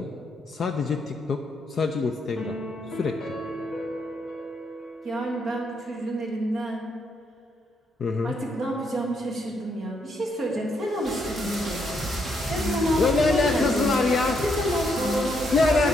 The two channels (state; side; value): normal; both; correlation 0.76